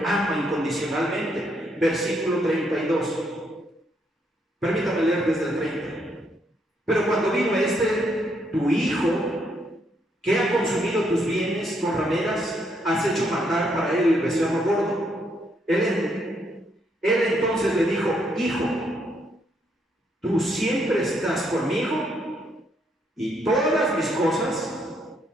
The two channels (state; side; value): normal; both; correlation 0.74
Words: ama incondicionalmente. Versículo 32. Permítame leer desde el 30. Pero cuando vino tu hijo, que ha consumido tus bienes con rameras, has hecho matar para él el becerro gordo. Él entonces le dijo: hijo, tú siempre estás conmigo y todas mis